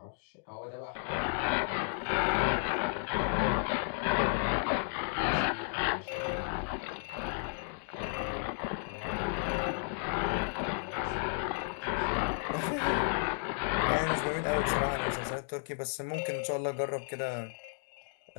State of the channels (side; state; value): right; silent; digital silence